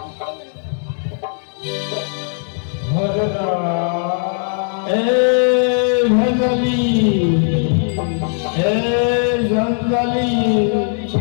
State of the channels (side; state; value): right; silent; 67 dB below the other